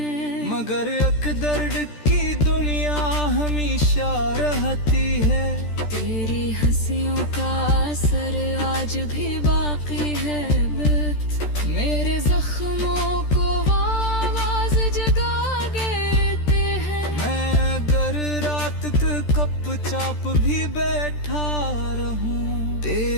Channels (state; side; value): late; right; 13 ms